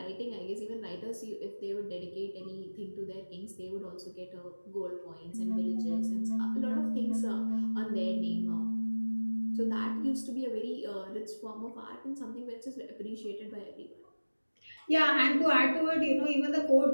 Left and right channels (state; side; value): inverted; both; correlation -1.00